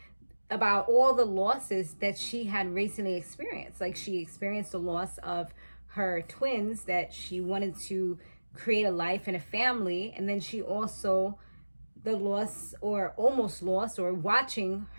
about all the losses that she had recently experienced. Like, she experienced the loss of her twins, that she wanted to create a life and a family. And then she also, the loss, or almost lost, or watching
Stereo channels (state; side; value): inverted; both; correlation -1.00